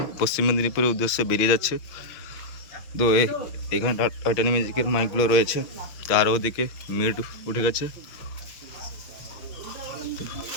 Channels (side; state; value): right; late; 6.2 ms